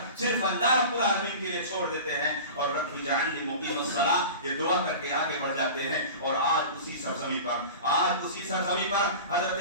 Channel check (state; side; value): inverted; both; correlation -0.35